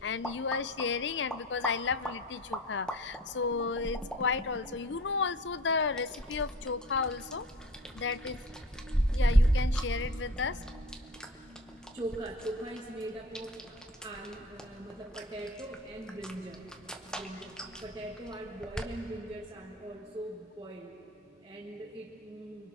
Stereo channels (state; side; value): normal; both; correlation 0.40